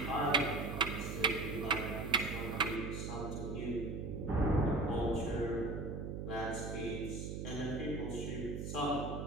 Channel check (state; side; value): noise; right; hum, 5 dB below the sound